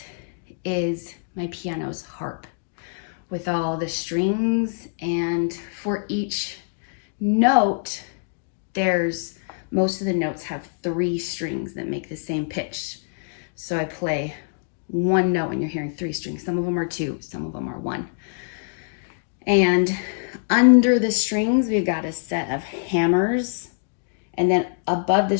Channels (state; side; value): silent; right; digital silence